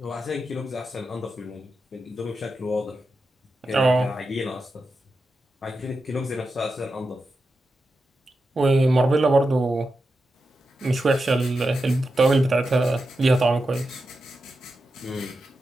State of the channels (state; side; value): normal; both; correlation 0.89